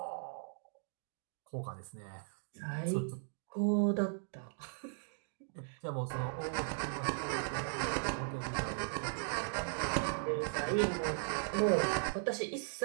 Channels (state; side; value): silent; left; digital silence